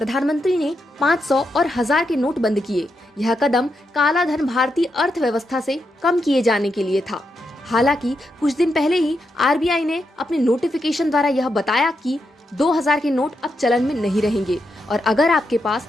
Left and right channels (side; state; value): both; normal; correlation 0.84